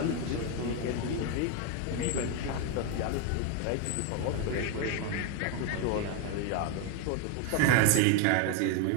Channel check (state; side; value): different; both; correlation 0.01